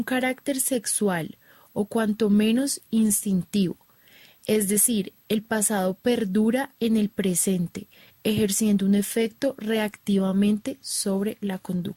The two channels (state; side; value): identical; both; correlation 1.00